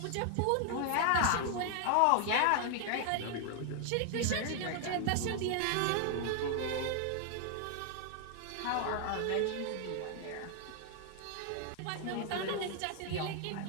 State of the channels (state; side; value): different; both; correlation 0.00